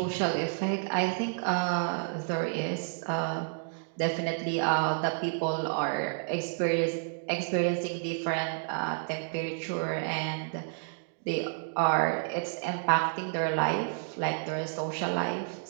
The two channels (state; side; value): silent; left; digital silence